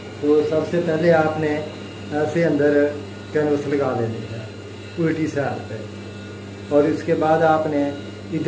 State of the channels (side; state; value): both; identical; correlation 1.00